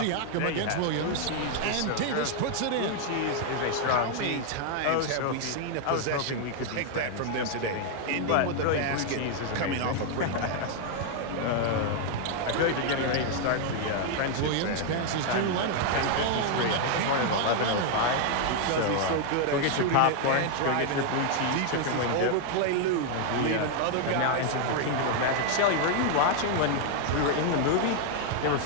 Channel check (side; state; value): both; different; correlation 0.00